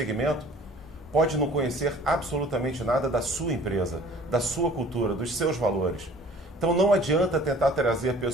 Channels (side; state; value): both; normal; correlation 0.50